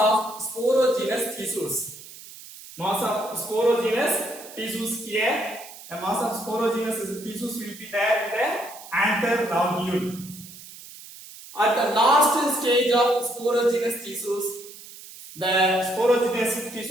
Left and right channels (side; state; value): right; noise; hiss, 17 dB below the sound